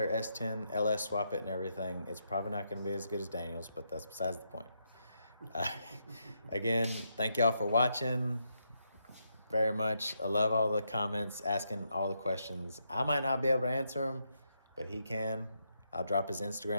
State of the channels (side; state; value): both; inverted; correlation -0.80